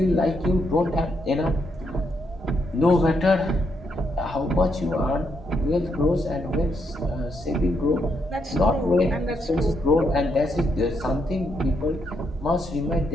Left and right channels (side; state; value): both; normal; correlation 0.78